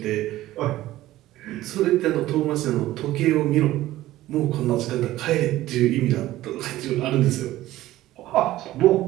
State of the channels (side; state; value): left; quieter; 15.6 dB